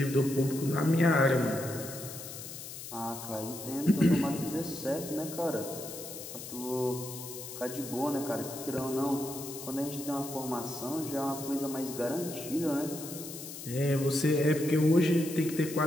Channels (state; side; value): noise; left; hiss, 10 dB below the sound